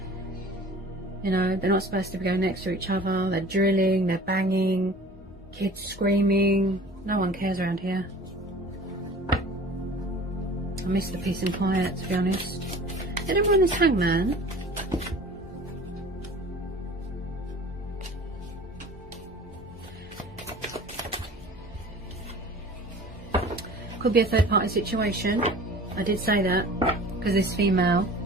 You know, they're not supposed to be going next to each other. They're drilling, they're banging, kids screaming. No one cares around here. I miss the peace and quiet, to be honest. Did everyone this Hangman? Could be a third party situation. I did say that because this female,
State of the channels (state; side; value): normal; both; correlation 0.44